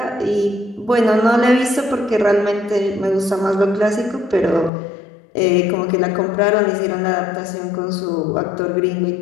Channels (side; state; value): right; drops out; at 4.7 s